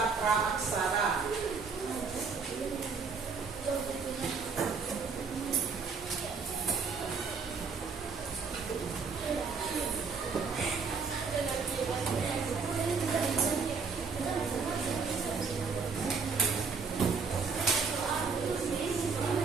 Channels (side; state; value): left; quieter; 5.1 dB